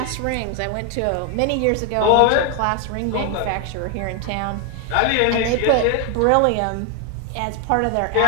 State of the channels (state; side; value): different; both; correlation 0.01